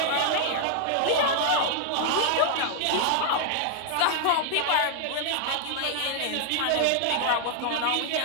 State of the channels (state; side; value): different; both; correlation -0.01